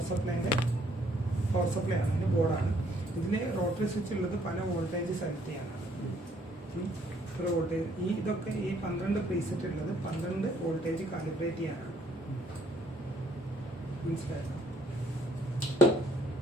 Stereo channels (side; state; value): both; normal; correlation 0.65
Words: സപ്ലൈ ആണ്, അതിൻ്റെ ബോർഡാണ്. ഇതിന് റോട്ടറി സ്വിച്ച് ഉള്ളത് പല വോൾട്ടേജ് സെലക്ട് ചെയ്യാനാണ്. ഒരു വോൾട്ടേജ് ഇതൊക്കെ ഈ 12 പ്രീസെറ്റ് ഉള്ളത് 12 വോൾട്ടേജ് കാലിബ്രേറ്റ് ചെയ്യാനാണ്. മനസ്സിലായോ?